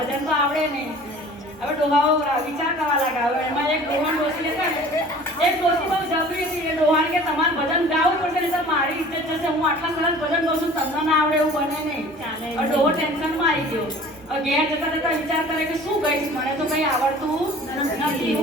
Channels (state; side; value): normal; both; correlation 0.46